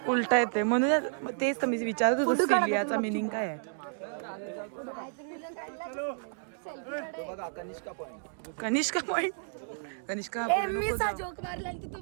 उलटा येते म्हणून तेच तर मी विचारत होतो सिलियाचा मिनिंग काय आहे. कनिष्का पॉइंट. कनिष्का जोक मारला तर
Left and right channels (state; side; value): silent; left; digital silence